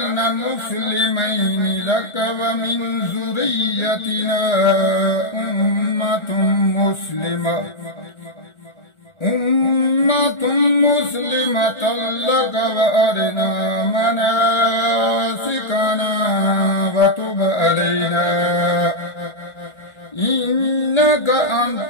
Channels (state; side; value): late; right; 1.4 ms